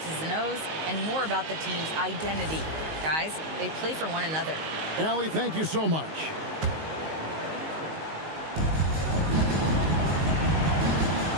and O's and more about the team's identity. Guys, they play for one another. Allie, thank you so much.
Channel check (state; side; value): late; left; 19 ms